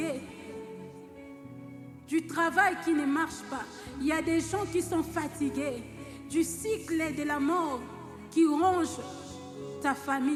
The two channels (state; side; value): identical; both; correlation 1.00